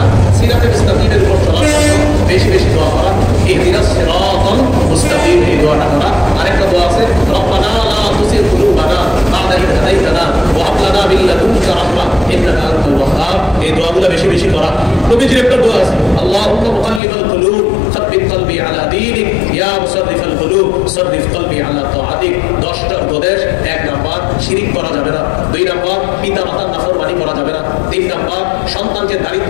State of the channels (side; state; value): right; drops out; at 17.0 s